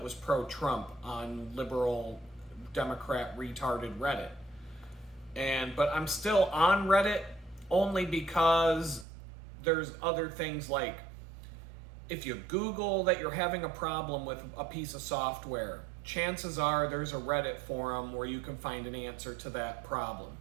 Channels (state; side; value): drops out; left; at 9.1 s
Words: was pro-Trump on liberal Democrat retarded Reddit. But I'm still on Reddit only because there's other things like if you Google that you're having a problem with a piece of software, chances are there's a Reddit forum where you can find an answer to that problem.